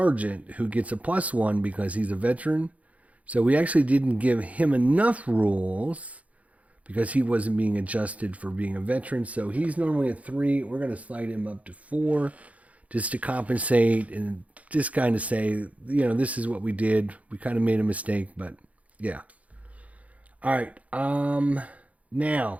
who gets a +1 because he's a veteran. So we actually didn't give him enough rules because he wasn't being adjusted for being a veteran. So he's normally a 3. We're going to slide him up to 4 just to compensate and just kind of say, this is what we did. We kind of made a mistake, but yeah. All right.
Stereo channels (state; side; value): late; left; 0.068 ms